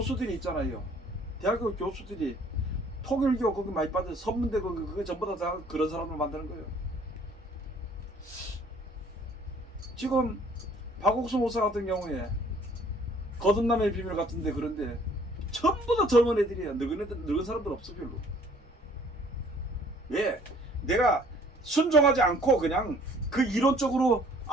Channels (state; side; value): normal; both; correlation 0.57